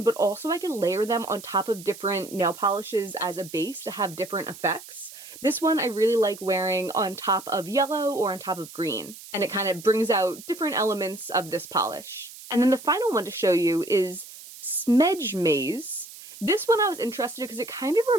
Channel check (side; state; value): right; noise; hiss, 16 dB below the sound